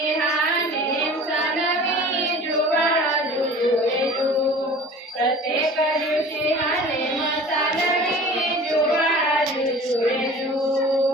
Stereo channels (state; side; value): normal; both; correlation 0.43